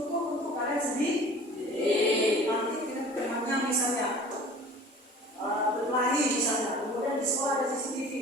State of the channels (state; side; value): normal; both; correlation 0.44